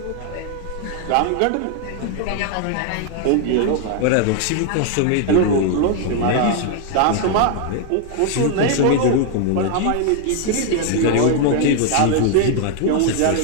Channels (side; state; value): both; different; correlation 0.00